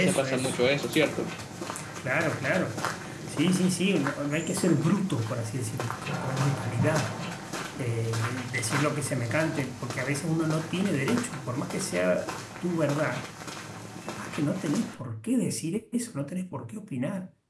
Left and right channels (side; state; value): both; identical; correlation 1.00